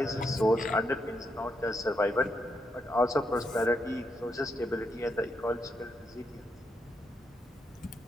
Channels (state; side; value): normal; both; correlation 0.80